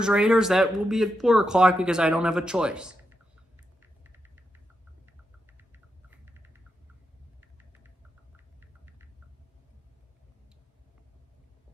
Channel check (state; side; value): normal; both; correlation 0.85